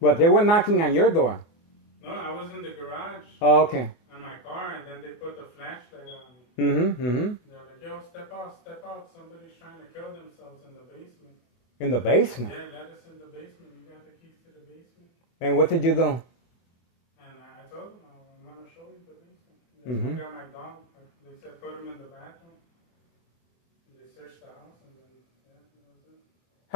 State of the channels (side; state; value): right; late; 24 ms